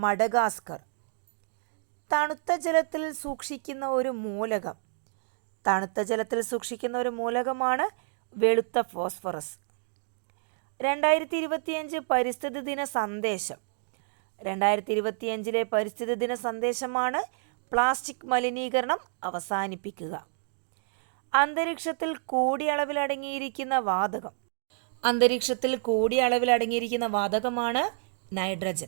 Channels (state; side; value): silent; left; digital silence